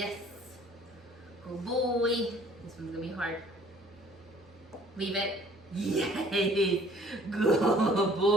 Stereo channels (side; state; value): both; normal; correlation 0.55